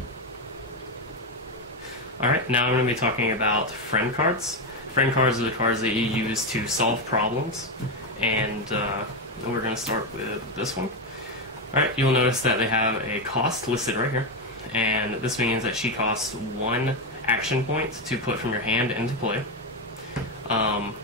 Alright, now I'm going to be talking about friend cards. Friend cards are the cards that you use to solve problems, and we're going to start with this one. Alright, you'll notice that they have a cost listed right here, and this means that she costs 1 action point to put from your hand into play.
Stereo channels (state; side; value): normal; both; correlation 0.09